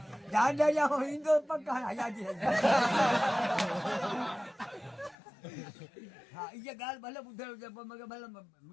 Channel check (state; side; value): drops out; right; at 5.2 s